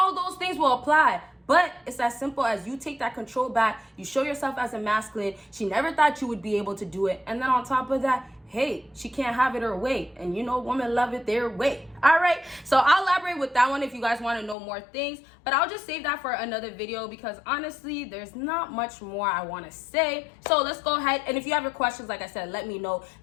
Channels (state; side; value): drops out; right; at 14.6 s